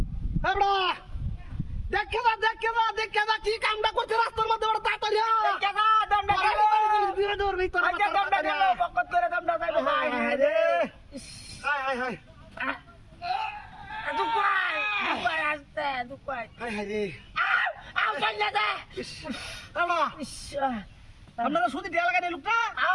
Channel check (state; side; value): identical; both; correlation 1.00